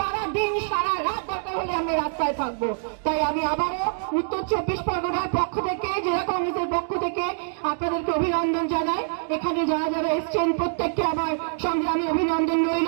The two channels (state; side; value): silent; left; digital silence